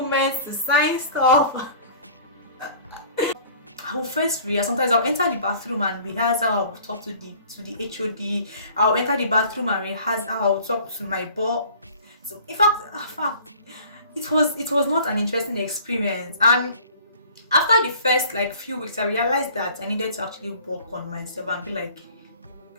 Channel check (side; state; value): both; inverted; correlation -0.49